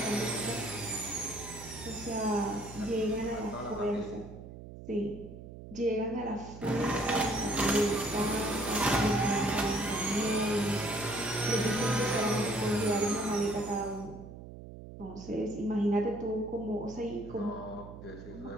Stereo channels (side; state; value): right; noise; hum, 13 dB below the sound